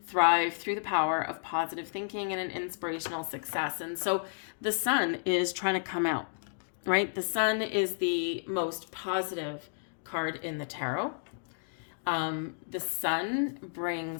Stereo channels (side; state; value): right; silent; digital silence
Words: Thrive through the power of positive thinking and an inspirational success. And so the Sun is trying to come out, right? The Sun is the most positive card in the tarot. The Sun